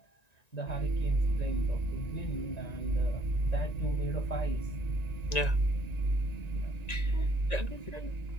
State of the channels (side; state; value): right; late; 1.9 ms